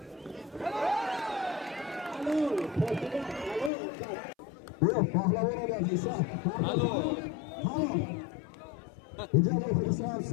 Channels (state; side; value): drops out; right; at 3.7 s